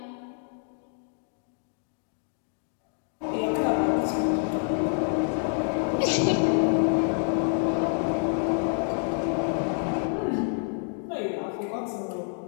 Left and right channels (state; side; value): silent; right; 60 dB below the other